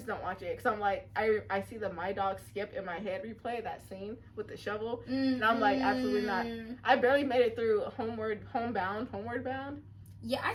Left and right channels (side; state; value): both; identical; correlation 1.00